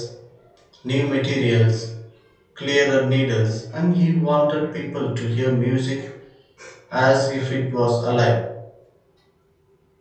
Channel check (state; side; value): identical; both; correlation 1.00